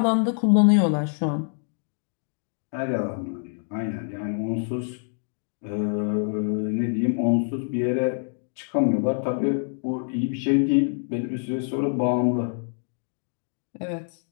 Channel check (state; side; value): silent; right; digital silence